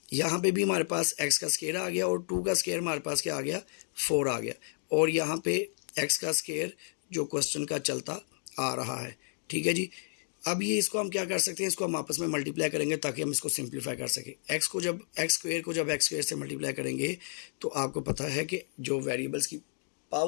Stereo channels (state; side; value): silent; right; 57 dB below the other